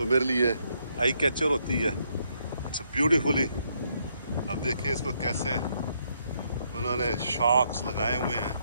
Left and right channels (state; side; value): inverted; both; correlation -0.74